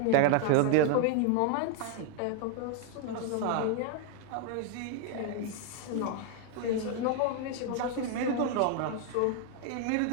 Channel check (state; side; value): different; both; correlation 0.00